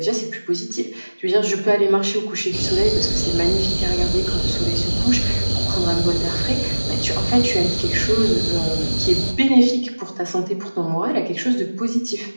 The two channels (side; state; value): both; inverted; correlation -1.00